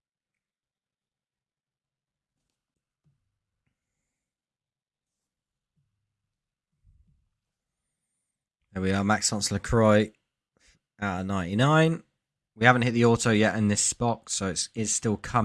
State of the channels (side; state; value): both; identical; correlation 1.00